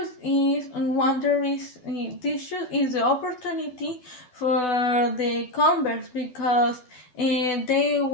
is this shoes is the opportunity for the Converse because they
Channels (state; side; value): late; right; 12 ms